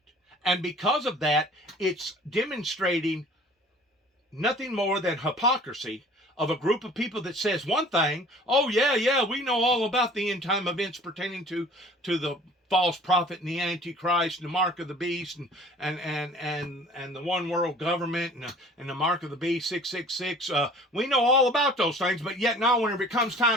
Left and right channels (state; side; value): normal; both; correlation 0.48